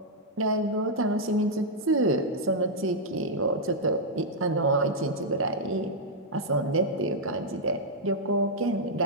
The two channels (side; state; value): both; normal; correlation -0.06